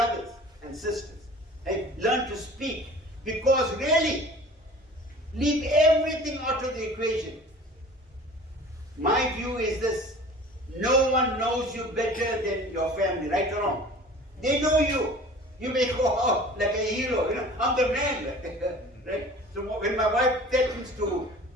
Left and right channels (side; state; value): both; normal; correlation 0.43